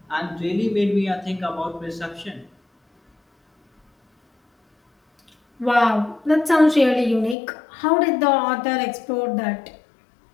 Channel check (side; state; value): right; drops out; at 7.4 s